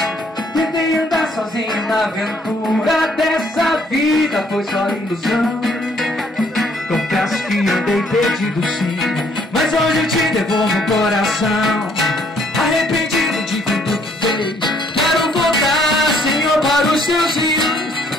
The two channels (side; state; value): both; normal; correlation 0.65